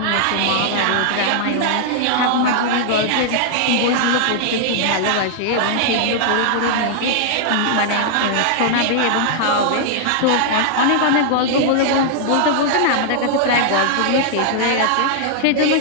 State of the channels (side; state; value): both; different; correlation -0.01